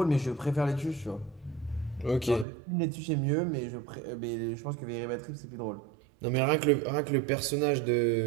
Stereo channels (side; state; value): left; drops out; at 2.5 s